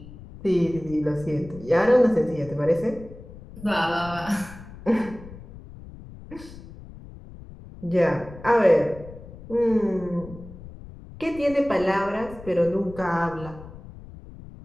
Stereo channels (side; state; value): left; noise; rumble, 16 dB below the sound